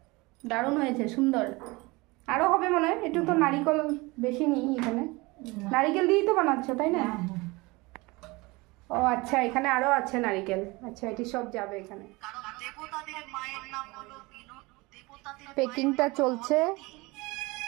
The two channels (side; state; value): left; quieter; 23.8 dB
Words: দারুণ হয়েছে, সুন্দর। আরো হবে মনে হয়, একটু তো নারিকেল বেশি নিই এখানে। নারিকেল দিয়েই তো বানাচ্ছো তাই না? হ্যাঁ, হ্যাঁ। ও আচ্ছা, এখানে আরো আছে নারিকেল। আচ্ছা, এটি সব যাবে এখানে। পেকিংটা চলছে